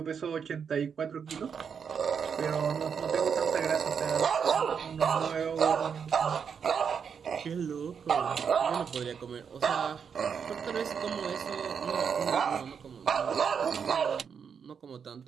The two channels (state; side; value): quieter; left; 6.8 dB